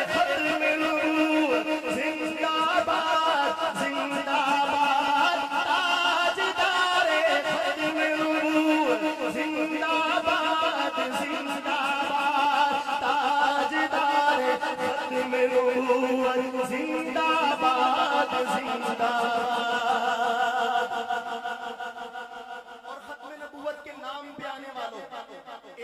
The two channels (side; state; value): both; identical; correlation 1.00